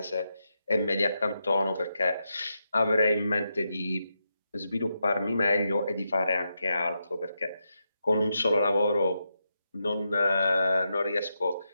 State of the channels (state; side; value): inverted; both; correlation -0.85